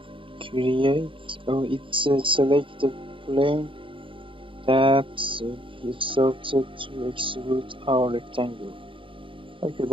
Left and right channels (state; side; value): late; left; 0.25 ms